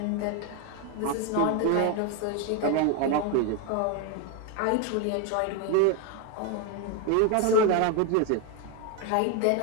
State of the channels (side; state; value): both; different; correlation 0.01